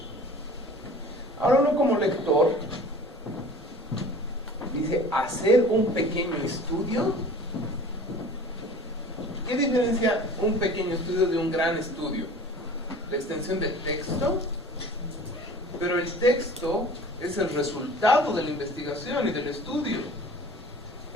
Ahora uno como lector dice, ¿hacer un pequeño estudio? ¿Qué diferencia un pequeño estudio de un gran estudio? La extensión del texto, pero el texto es el resultado de la investigación y del estudio.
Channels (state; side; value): normal; both; correlation 0.43